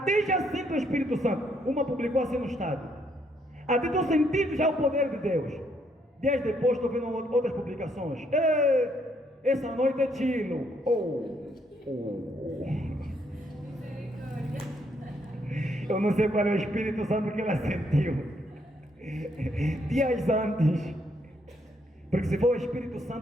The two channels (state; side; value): normal; both; correlation 0.72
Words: já sinto o Espírito Santo. Uma publicou assim no estado. Até estou sentindo já o poder de Deus. Dias depois estou vendo outras publicações. Essa noite é tilo. Eu não sei qual é o Espírito Santo que ela sentiu dias antes. Porque se for o Espírito